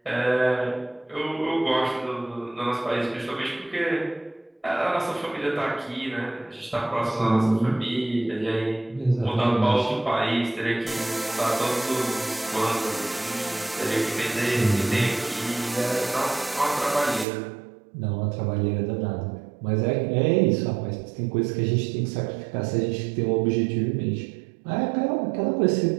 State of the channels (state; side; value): drops out; left; at 17.2 s